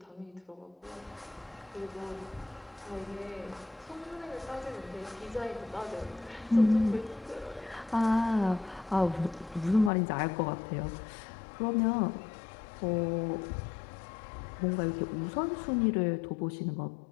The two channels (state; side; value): drops out; right; at 9.9 s